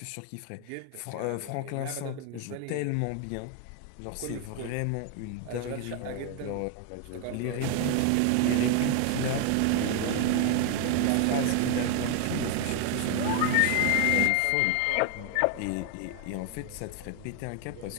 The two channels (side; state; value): both; different; correlation 0.01